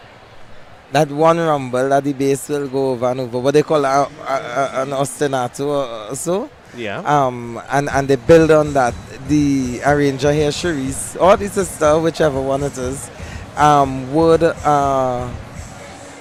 That one rumble that the bass will go over and over, what they call an ostinato or so. Yeah. And they build on that. The arranger here, Cherise, or the sister, whichever one it is, would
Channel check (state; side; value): identical; both; correlation 1.00